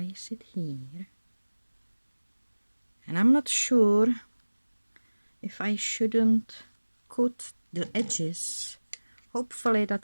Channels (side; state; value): both; inverted; correlation -1.00